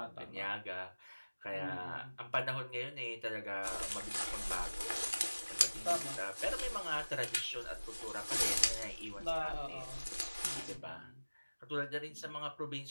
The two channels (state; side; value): inverted; both; correlation -1.00